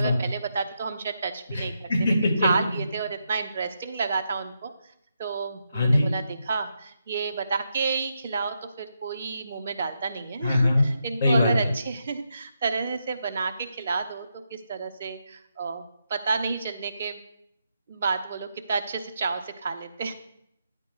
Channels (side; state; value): both; inverted; correlation -0.82